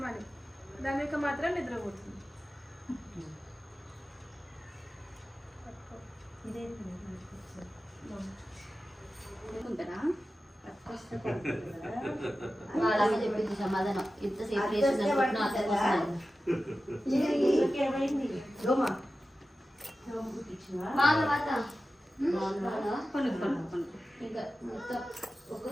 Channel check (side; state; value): both; normal; correlation 0.94